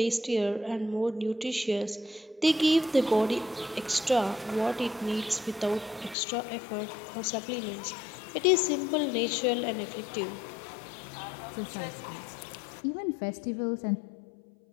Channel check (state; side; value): drops out; right; at 6.2 s